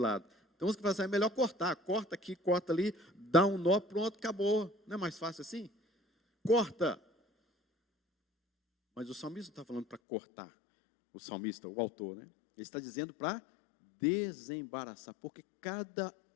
Então, você vai fazer, é melhor cortar. Corta aqui, corta ali, dá um nó, pronto, acabou. Não é mais fácil assim? Corta. Mas o salmista não está falando para cortar. O salmista, o autor, né? Ele está dizendo para desembaraçar, porque cada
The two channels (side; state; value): right; drops out; at 10.0 s